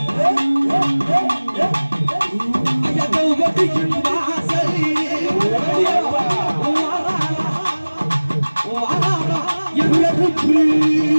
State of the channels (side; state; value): both; inverted; correlation -1.00